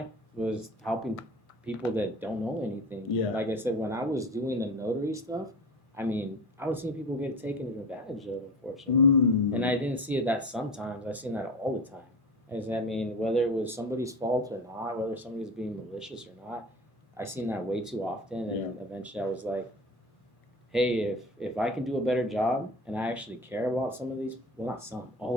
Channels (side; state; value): both; normal; correlation 0.33